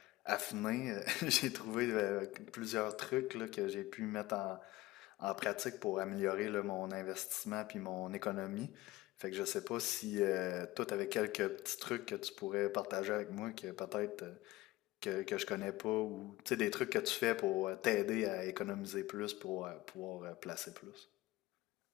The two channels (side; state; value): right; quieter; 18.4 dB